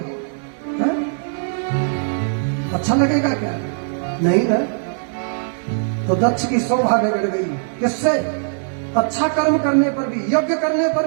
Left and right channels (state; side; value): silent; left; digital silence